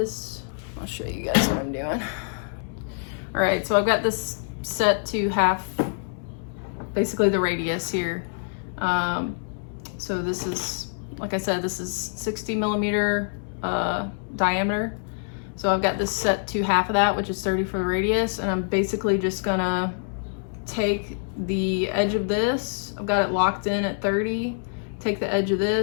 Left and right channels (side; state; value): right; silent; digital silence